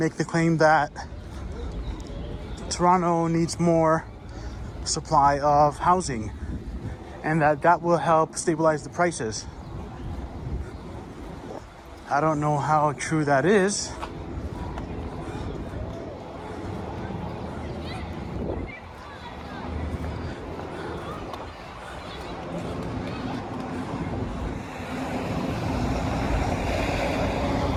the claim that Toronto needs more supply of housing and that will help stabilize the prices. I don't know how true that is.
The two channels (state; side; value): identical; both; correlation 1.00